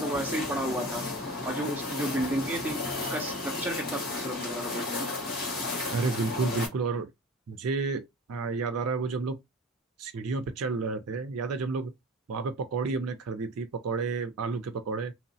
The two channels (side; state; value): both; normal; correlation 0.36